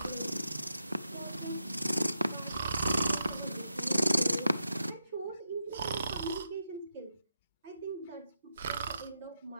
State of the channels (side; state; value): both; inverted; correlation -0.85